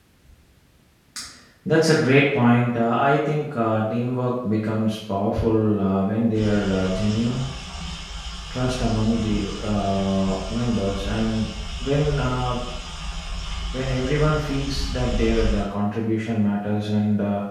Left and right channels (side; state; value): both; identical; correlation 1.00